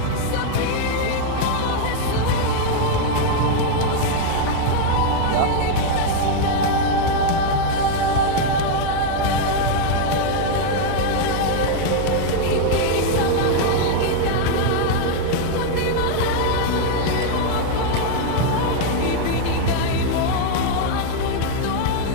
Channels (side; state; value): both; different; correlation 0.00